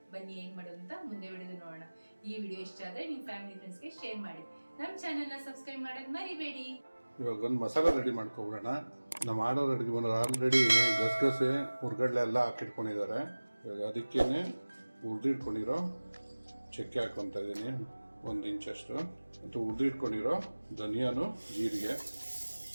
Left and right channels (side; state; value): both; inverted; correlation -1.00